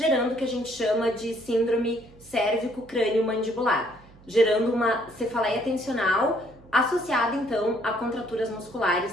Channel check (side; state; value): right; noise; hum, 25 dB below the sound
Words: o que a gente chama de síndrome cérvico-crânio-mandibular, gerando uma cefaleia tensional associada então a contraturas